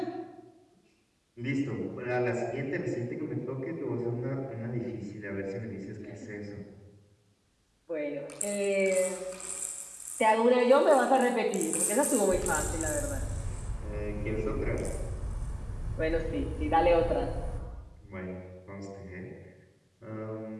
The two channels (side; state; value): both; identical; correlation 1.00